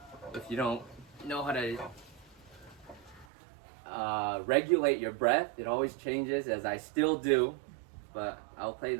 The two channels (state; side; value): drops out; left; at 3.2 s